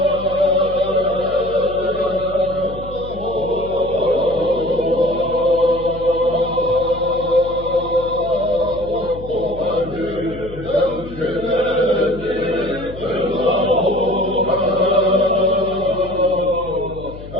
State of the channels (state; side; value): noise; left; hum, 14 dB below the sound